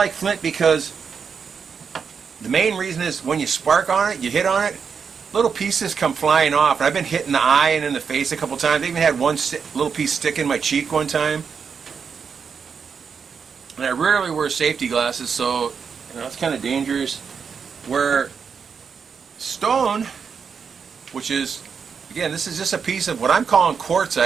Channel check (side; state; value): left; quieter; 6.2 dB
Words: flint because the main reason is when you spark on it, you hit on it, little pieces come flying off. And I've been hit in the eye and in the face a couple times. I even had one little piece stick in my cheek one time. And I rarely wear safety glasses, so it's kind of dangerous. Where stone, which is, again, this is just a piece of what I'm calling